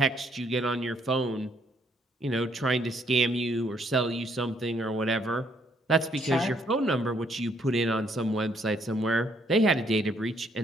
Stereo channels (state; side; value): normal; both; correlation 0.69